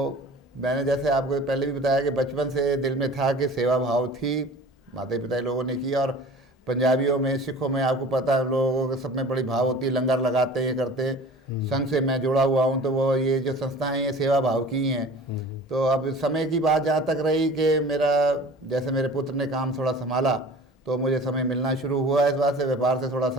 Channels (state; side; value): normal; both; correlation 0.43